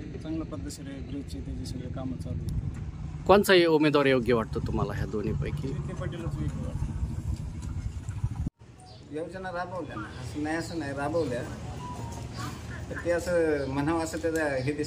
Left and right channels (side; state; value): both; identical; correlation 1.00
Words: चांगल्या पद्धतशीर आहे. ब्रिजची त्याची सगळे कामं चालू आहेत. कोणचाही उमेदवार योग्य वाटतो तुम्हाला ह्या दोन्हीपैकी? विखे पाटीलच वेगळं वाटतं. योजना राबवल्या ना, असं नाही राबवल्या, तर ते असं म्हणावं असं त्याचा हे